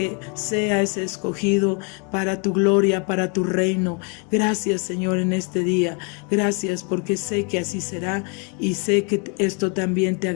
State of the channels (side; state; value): right; quieter; 35.7 dB